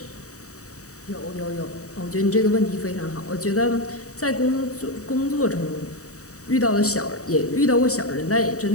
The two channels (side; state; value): right; late; 0.66 ms